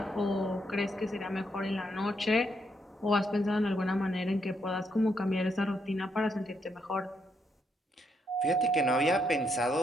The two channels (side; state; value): both; normal; correlation 0.76